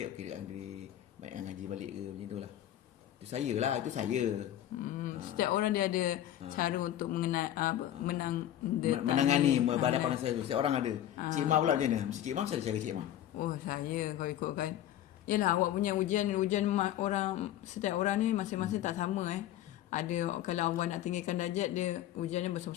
okey akan beri baik ngaji balik ke macam itulah. Itu saya. Setiap orang dia ada cara untuk menangani berhadapan dengan saya. Setiap orang ada. Cik Imah pula macam mana? Mesti Cik Imah mesti ada cara Cik Imah. Saya kalau ikutkan, yalah, awak punya ujian orang, setiap orang ni masing-masing tak sama Ada kalau awak nak tinggikan darjat dia, ujian dia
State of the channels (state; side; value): quieter; right; 12.1 dB